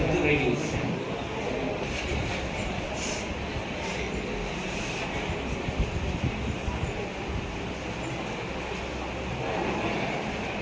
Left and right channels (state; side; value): identical; both; correlation 1.00